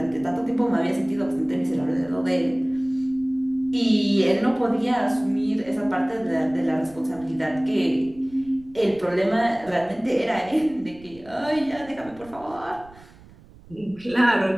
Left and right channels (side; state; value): right; noise; rumble, 23 dB below the sound